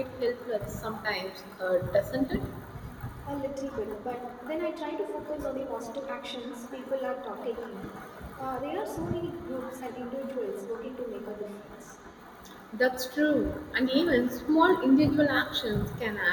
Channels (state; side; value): identical; both; correlation 1.00